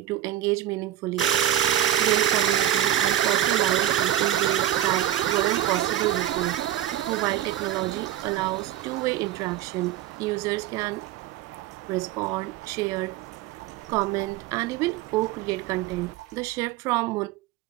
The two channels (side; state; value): left; quieter; 12.3 dB